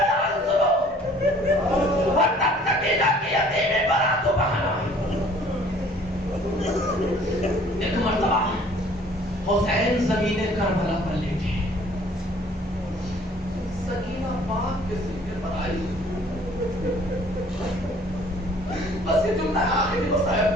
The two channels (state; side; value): normal; both; correlation 0.55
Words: سنو. اور تب سکینہ کی یتیمی براتو بہانا. ایک مرتبہ حسین زمین کربلا پر لیٹے. سکینہ پاک کے سینے پر آئی. بس یہ جملہ آخری وہ